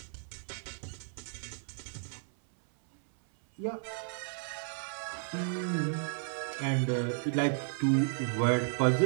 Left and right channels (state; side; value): silent; left; 56 dB below the other